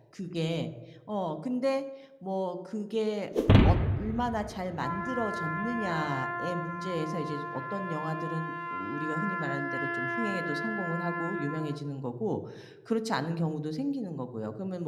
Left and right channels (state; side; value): identical; both; correlation 1.00